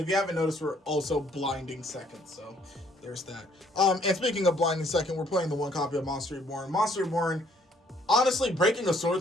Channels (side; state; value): both; normal; correlation 0.64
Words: you haven't noticed, we're also blinding second. So, there's that. And speaking of blinding second, we're playing the 1 copy of Monster Reborn. Monster Reborn, honestly, breaking a